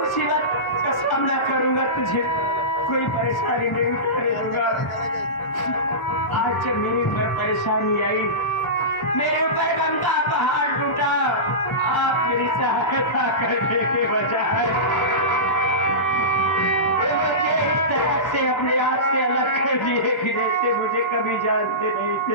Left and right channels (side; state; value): right; late; 1.1 ms